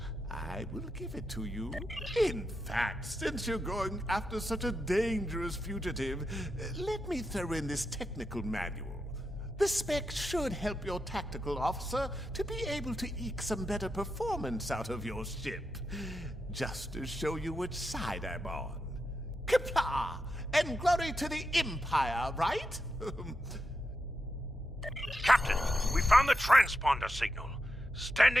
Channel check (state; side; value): normal; both; correlation 0.87